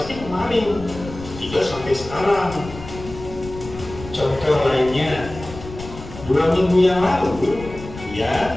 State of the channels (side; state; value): left; noise; rumble, 13 dB below the sound